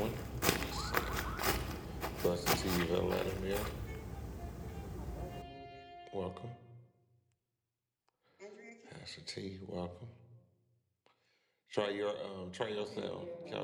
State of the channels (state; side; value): identical; both; correlation 1.00